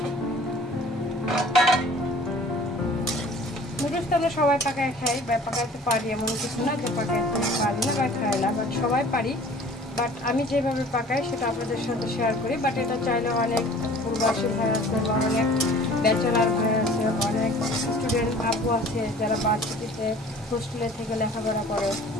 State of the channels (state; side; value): normal; both; correlation 0.48